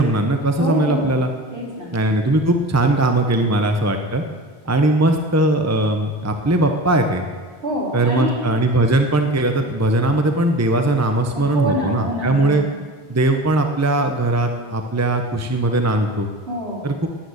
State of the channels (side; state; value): both; normal; correlation 0.36